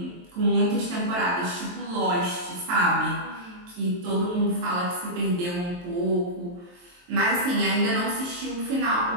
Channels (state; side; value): late; left; 23 ms